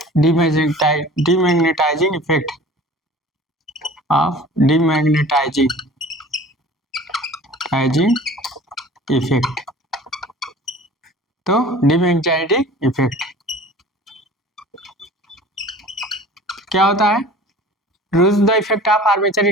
demagnetizing effect of demagnetizing effect। तो डिमैग्नेटाइजिंग इफेक्ट क्या होता है? Reduce the effect of armature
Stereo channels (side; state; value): both; normal; correlation 0.44